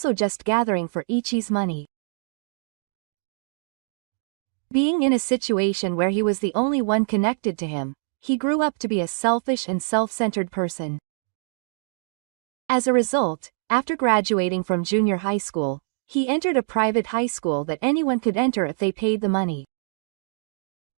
just gathering for Ichi's money. Being in a situation where he was the only one connected to him, he grew up to be a selfish and self-centered person. As a result, after graduating from junior high school, he entered a private high school that anyone could enter if they paid the money.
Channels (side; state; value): left; silent; digital silence